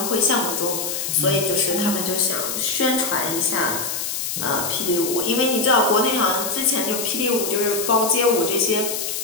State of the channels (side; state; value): left; noise; hiss, 3 dB below the sound